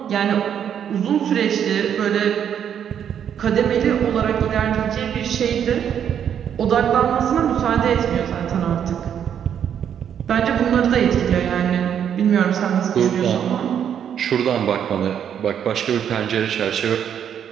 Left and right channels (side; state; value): left; quieter; 8.8 dB